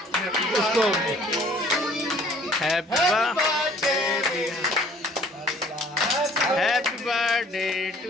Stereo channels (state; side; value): normal; both; correlation 0.55